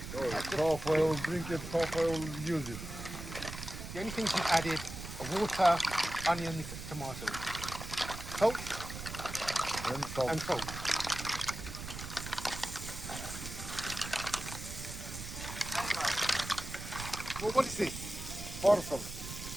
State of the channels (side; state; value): right; noise; rumble, 9 dB below the sound